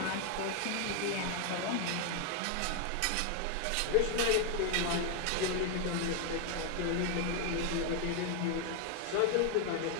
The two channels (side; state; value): both; different; correlation 0.01